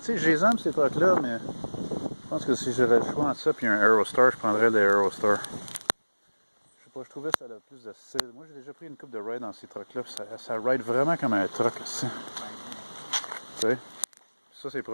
sais, je les aime ces trucs-là, mais je pense que si j'avais le choix entre ça et un Aerostar, je prendrais le Aerostar. Je sais pas, je trouvais que ça avait plus de style. Moi, j'ai déjà pris une coupe de ride dans ces trucs-là, ça ride vraiment comme un truck, tu sais. Ça, c'est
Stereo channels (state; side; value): inverted; both; correlation -1.00